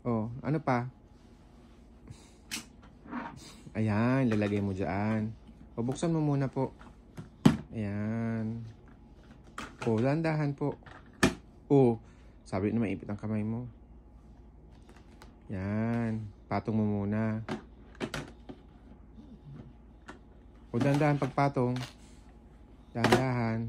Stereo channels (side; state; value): both; identical; correlation 1.00